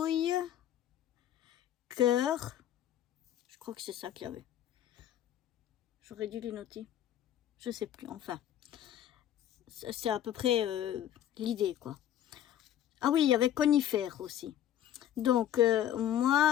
cœur. Je crois que c'est ça qu'il y avait. J'aurais dû les noter. Je sais plus, enfin. C'est à peu près l'idée, quoi. Ah oui, il y avait conifère aussi. Donc,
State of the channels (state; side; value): quieter; right; 11.2 dB